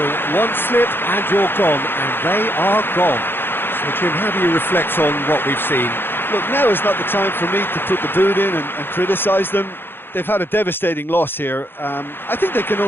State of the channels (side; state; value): right; late; 0.10 ms